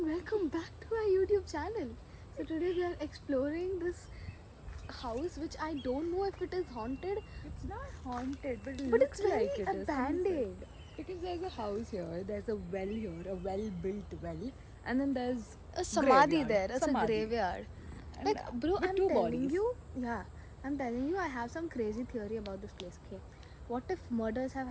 welcome back to our YouTube channel. So today we are exploring this house which I don't know if it is haunted. It's not haunted, but it But looks it's very like it is. abandoned. Because there's a house here, there's a well here, a well-built well, and then there's A samadhi graveyard. there. It's Samadhi. a graveyard. And, Like, bro, with I'm two telling bodies. you. Yeah, I'm telling you, I have some crazy theory about this place. Okay, what if murders have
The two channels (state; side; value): identical; both; correlation 1.00